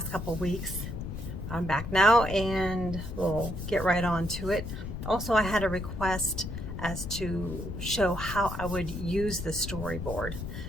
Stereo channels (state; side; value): noise; left; rumble, 7 dB below the sound